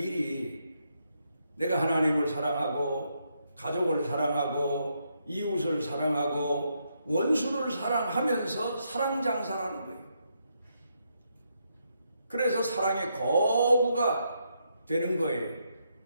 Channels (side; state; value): both; inverted; correlation -0.79